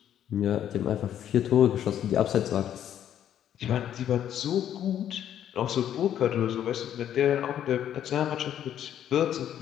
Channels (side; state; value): right; quieter; 10.4 dB